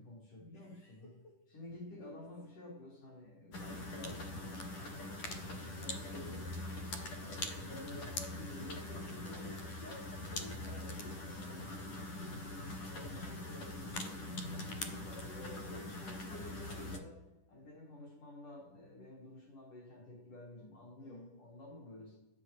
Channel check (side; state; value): right; late; 10 ms